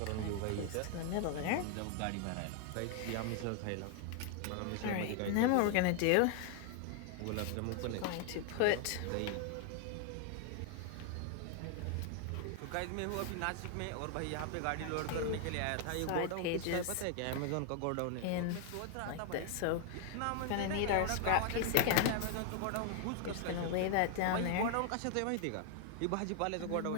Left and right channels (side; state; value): both; different; correlation 0.00